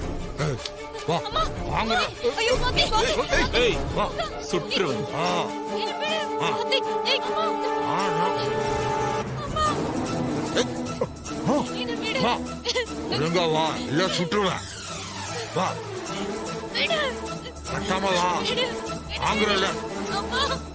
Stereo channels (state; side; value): identical; both; correlation 1.00